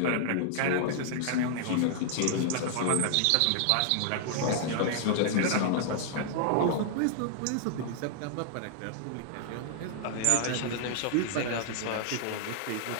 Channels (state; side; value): different; both; correlation -0.01